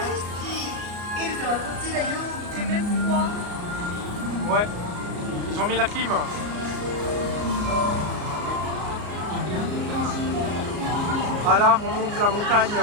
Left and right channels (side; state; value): left; late; 33 ms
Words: き。エルサはこっちだよ。 C'est même froid. Ouais, ils ont mis la clim. Ah là, on monte la montagne.